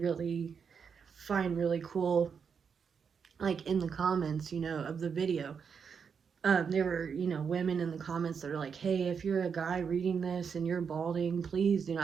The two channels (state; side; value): quieter; left; 6.4 dB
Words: really find really cool, like in the comments, of the video, there were, women in the comments that are like, hey, if you're a guy reading this and you're balding, please do